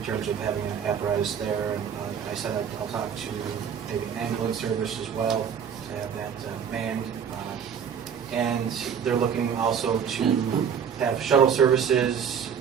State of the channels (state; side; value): quieter; left; 7.6 dB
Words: terms of having an apparatus there. And I said I'll talk to maybe ambulance service as well to have that manned. And they're looking also to have shuttle services